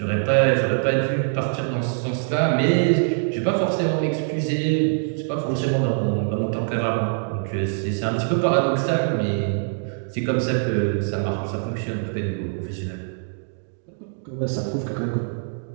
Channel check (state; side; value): silent; left; digital silence